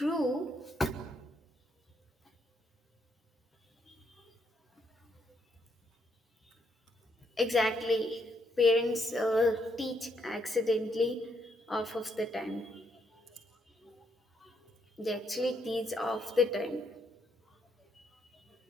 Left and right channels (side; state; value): both; normal; correlation 0.75